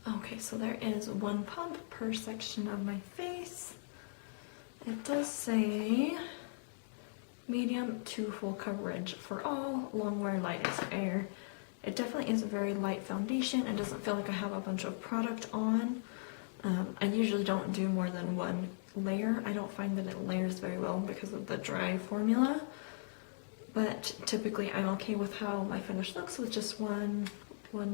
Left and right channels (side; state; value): right; silent; digital silence